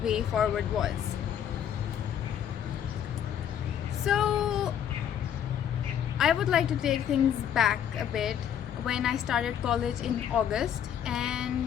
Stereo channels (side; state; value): right; quieter; 9.4 dB